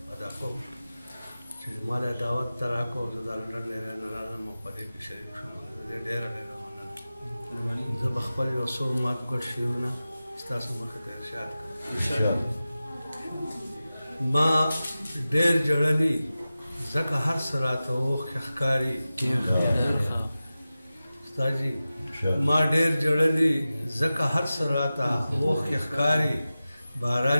ادا کوم چې ما له دعوت ته راکړو زه د لندن نه راغلم او په دې کې شریک شوم. ډېره مننه. زه به خپل یو څو ماتګړ شعرونه ستاسو مخې ته ارشاد کړم. ما ډېر جړلي ځکه هر څه راته اوښکې ښکاري. استادجي ما ډېر جړلي ځکه هر څه راته اوښکې ښکاري.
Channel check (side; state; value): both; inverted; correlation -0.95